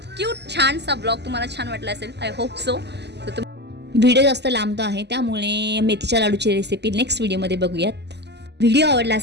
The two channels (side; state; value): left; late; 0.50 ms